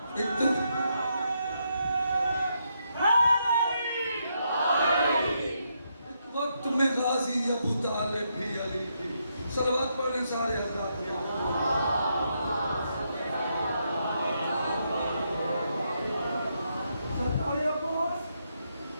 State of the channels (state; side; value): inverted; both; correlation -0.79